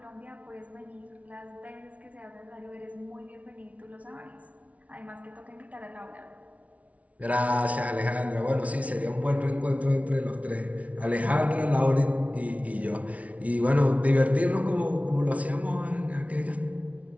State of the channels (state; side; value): late; left; 0.067 ms